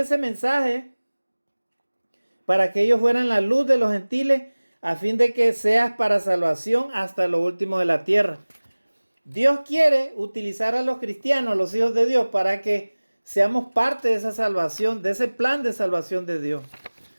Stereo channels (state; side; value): inverted; both; correlation -1.00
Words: mensaje para que ellos fueran la luz de los gentiles, a fin de que seas para salvación hasta lo último de la tierra. Dios quiere utilizar a los cristianos, a los hijos de Dios, para que seamos parte de esa salvación, de ese plan de salvación de Dios.